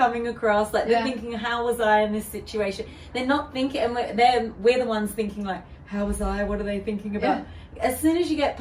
across. Like, they're thinking, how was I in this situation? They're not thinking, and we're the ones thinking like, how was I? What are they thinking about? As soon as you get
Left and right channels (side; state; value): both; identical; correlation 1.00